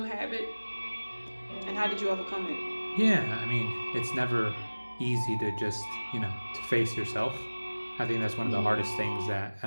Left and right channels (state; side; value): inverted; both; correlation -1.00